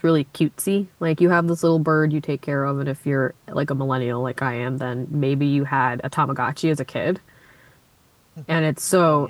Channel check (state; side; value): identical; both; correlation 1.00